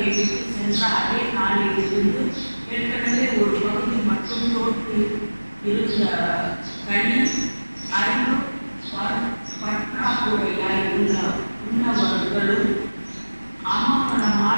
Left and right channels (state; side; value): inverted; both; correlation -1.00